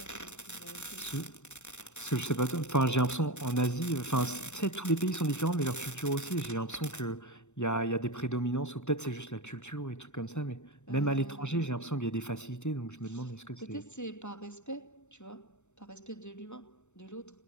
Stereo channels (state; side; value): late; right; 0.83 ms